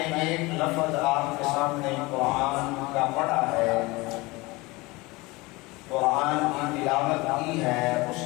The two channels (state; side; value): quieter; right; 22.9 dB